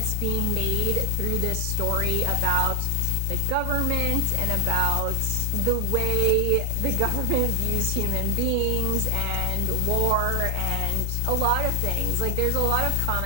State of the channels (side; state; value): both; different; correlation 0.00